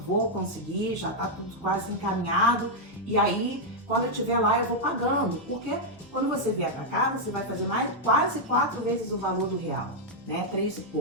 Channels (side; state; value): both; normal; correlation -0.03